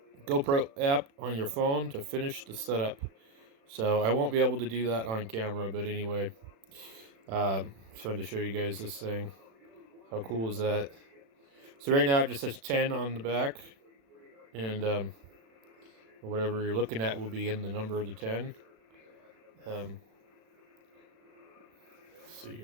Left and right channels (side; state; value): left; late; 36 ms